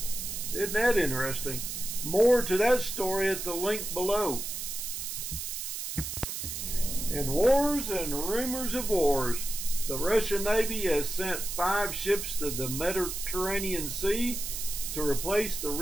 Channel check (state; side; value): noise; right; hiss, 5 dB below the sound